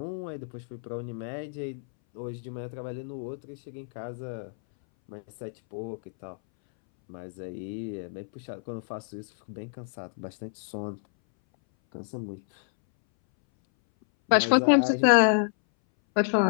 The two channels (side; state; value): right; silent; 59 dB below the other